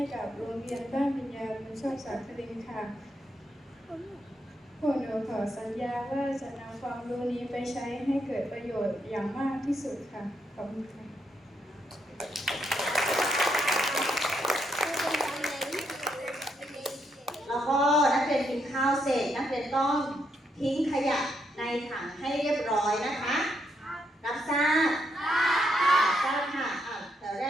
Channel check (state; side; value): normal; both; correlation 0.78